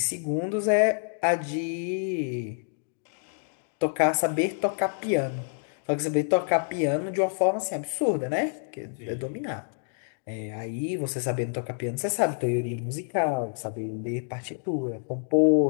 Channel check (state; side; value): silent; right; digital silence